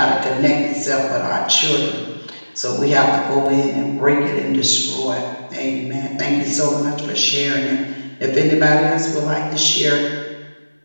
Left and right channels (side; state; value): both; inverted; correlation -1.00